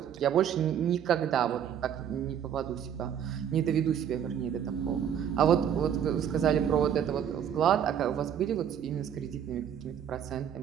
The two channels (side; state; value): left; quieter; 8.9 dB